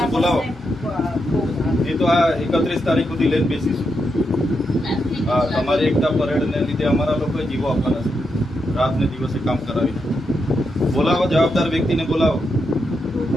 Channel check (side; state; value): both; normal; correlation 0.84